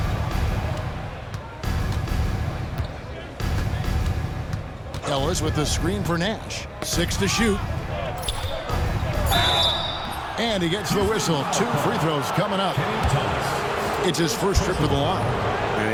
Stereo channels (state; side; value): identical; both; correlation 1.00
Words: Ellis with the screen for Nash. 6 to shoot. And he gets the whistle. 2 free throws coming up. It's his first trip to the line.